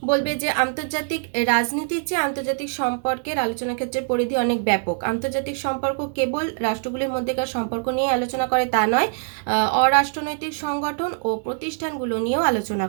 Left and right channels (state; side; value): silent; left; digital silence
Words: বলবে যে আন্তর্জাতিক রাজনীতির চেয়ে আন্তর্জাতিক সম্পর্কের আলোচনা ক্ষেত্রের পরিধি অনেক ব্যাপক। আন্তর্জাতিক সম্পর্ক কেবল রাষ্ট্রগুলির মধ্যেকার সম্পর্ক নিয়ে আলোচনা করে তা নয়, অরাষ্ট্রনৈতিক সংগঠন ও প্রতিষ্ঠানগুলো নিয়েও আলোচনা